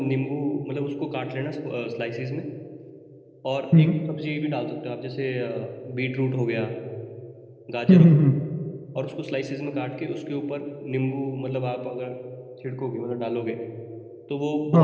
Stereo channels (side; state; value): both; identical; correlation 1.00